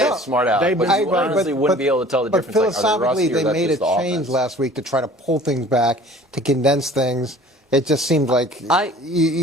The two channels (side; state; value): both; normal; correlation 0.48